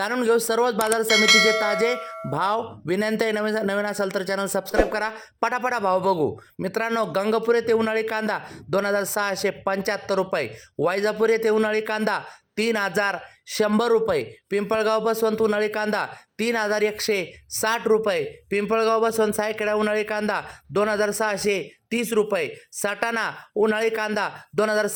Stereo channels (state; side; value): identical; both; correlation 1.00